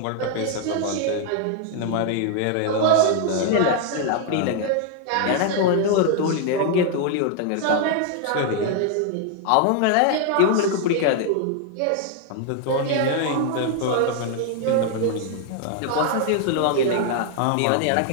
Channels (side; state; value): both; different; correlation 0.00